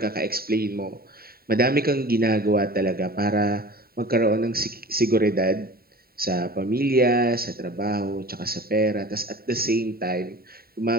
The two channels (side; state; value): left; late; 0.44 ms